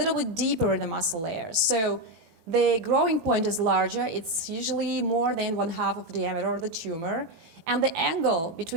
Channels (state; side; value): late; left; 18 ms